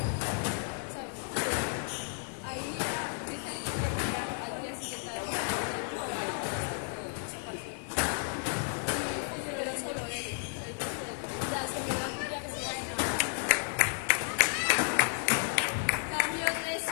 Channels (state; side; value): silent; right; 56 dB below the other